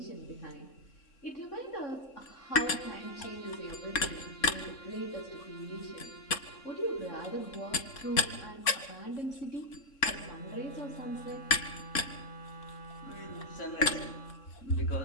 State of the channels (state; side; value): late; right; 3.6 ms